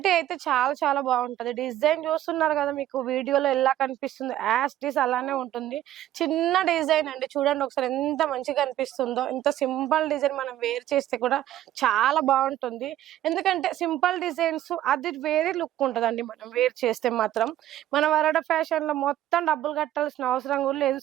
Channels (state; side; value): quieter; left; 13.1 dB